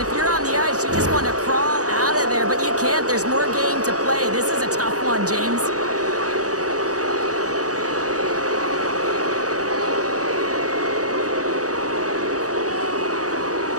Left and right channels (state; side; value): late; left; 0.67 ms